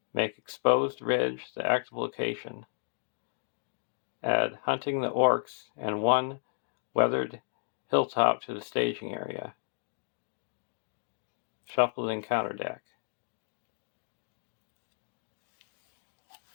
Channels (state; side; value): silent; right; digital silence